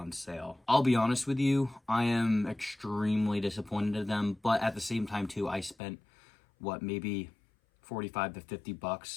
sale. I'll be honest with you, I am extremely disappointed in them, but at the same time too, I spent maybe $45 to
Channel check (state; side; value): drops out; right; at 5.8 s